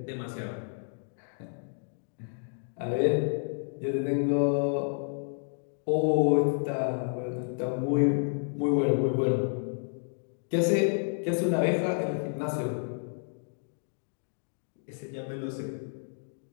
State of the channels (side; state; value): right; silent; digital silence